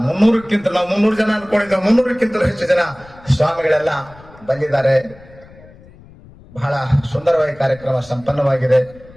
300ಕ್ಕಿಂತ, ನಾವು 300 ಜನ ಅನ್ಕೊಂಡಿದ್ದೇವೆ, 300ಕ್ಕಿಂತಲೂ ಹೆಚ್ಚು ಜನ ಸ್ವಾಮಿಗಳೆಲ್ಲ ಬಂದಿದ್ದಾರೆ. ಬಹಳ ಸುಂದರವಾಗಿ ಕಾರ್ಯಕ್ರಮ ಸಂಪನ್ನವಾಗಿದೆ.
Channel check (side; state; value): left; noise; rumble, 23 dB below the sound